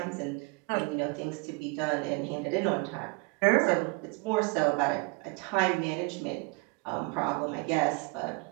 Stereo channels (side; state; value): left; quieter; 29.7 dB